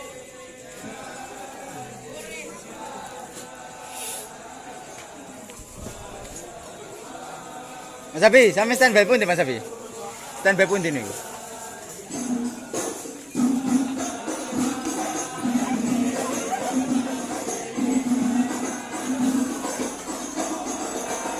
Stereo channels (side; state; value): both; identical; correlation 1.00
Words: Mas Abi, sampe standby pun di Mas Abi. Standby pun di nih.